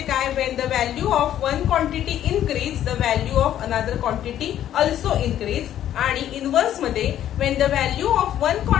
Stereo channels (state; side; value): quieter; right; 11.4 dB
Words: काय? When the value of one quantity increase the value of another quantity also increase. आणि इनवर्स मध्ये when the value of one